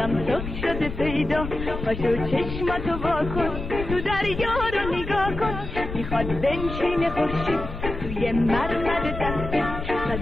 صبح شده پیدا پاشو چشماتو واکن تو دریا رو نگاه کن میخواد بنشینه خورشید توی مرمر دست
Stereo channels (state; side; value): noise; left; rumble, 7 dB below the sound